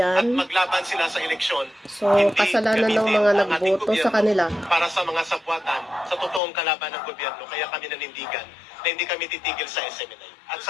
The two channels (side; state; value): right; drops out; at 6.4 s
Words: at maglaban sila sa eleksyon. So, Hindi kasalanan ng gamitin mga ang ating nagboto sa gobyerno kanila. para sa mga sabwatan sa totoong kalaban ng gobyerno. Kaya kami nanindigan na hindi kami titigil sa SMNI. At